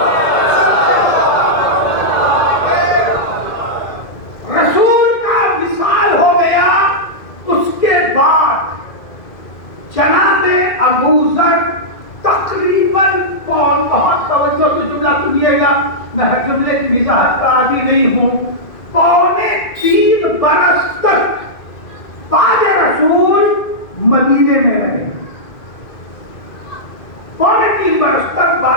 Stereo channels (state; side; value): late; right; 2.0 ms